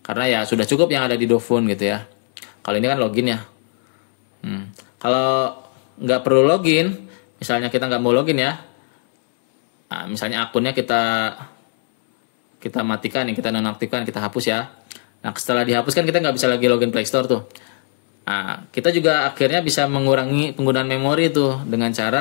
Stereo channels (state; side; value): silent; right; 66 dB below the other